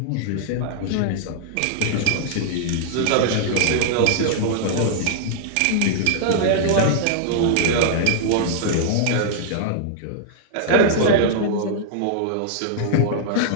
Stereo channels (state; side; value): different; both; correlation -0.01